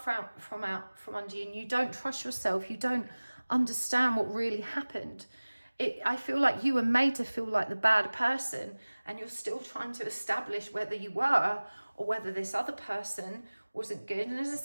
under you, and you don't trust yourself. You don't understand what really happened. I feel like you were made to feel like the bad person, and you're still trying to establish whether you were or whether this other person wasn't good. And as I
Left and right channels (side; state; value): both; inverted; correlation -1.00